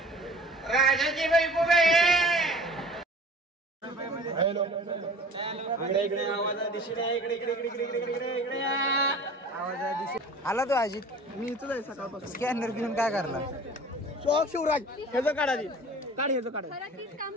राजाची बायको. आला तो अजित. मी इथं आहे सकाळपासून. स्कॅनर घेऊन काय करला? शॉक शिवराज ह्याचं काढा ती. काढ ह्याचं काढ. काम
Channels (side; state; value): both; normal; correlation 0.45